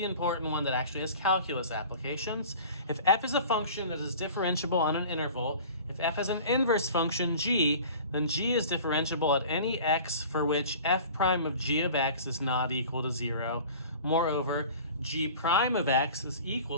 important one that actually has calculus applications. If f is a function that is differentiable on an interval, if f has an inverse function g, then g is differentiable at any x for which f prime of g of x is not equal to 0. Moreover, g prime of x is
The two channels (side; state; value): both; inverted; correlation -0.42